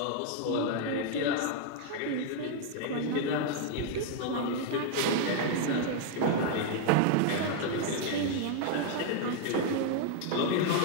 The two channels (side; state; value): both; different; correlation 0.00